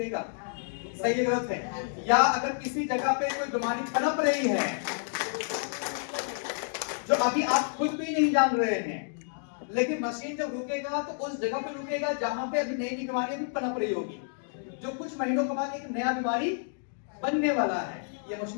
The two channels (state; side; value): silent; right; digital silence